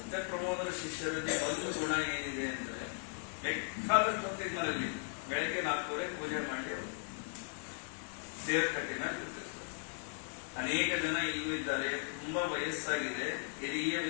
ಪ್ರಮೋದರ ಶಿಷ್ಯರಲ್ಲಿ ಒಂದು ಗುಣ ಏನಿದೆ ಅಂದ್ರೆ, ಬೇಕಾದಷ್ಟು ಹೊತ್ತಿಗೆ ಮನೆಯಲ್ಲಿ ಬೆಳಗ್ಗೆ 4:30 ಪೂಜೆ ಮಾಡಿ ದೇವರ ಕಟ್ಟಿನ ಕೂತಿರ್ತಾರೆ. ಅನೇಕ ಜನ ಈಗೂ ಇದ್ದಾರೆ, ತುಂಬಾ ವಯಸ್ಸಾಗಿದೆ, ಹಿರಿಯ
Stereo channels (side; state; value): right; silent; 53 dB below the other